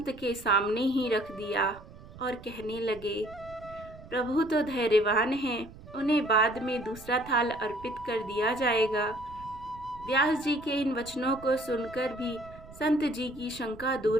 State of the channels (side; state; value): right; noise; rumble, 18 dB below the sound